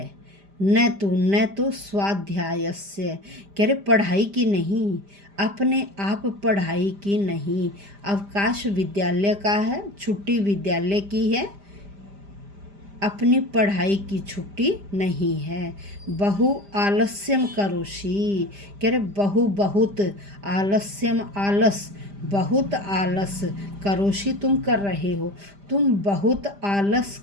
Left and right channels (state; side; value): late; left; 5.0 ms